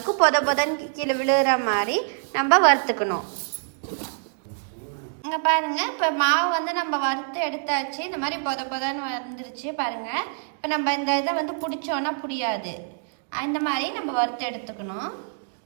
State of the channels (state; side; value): silent; left; digital silence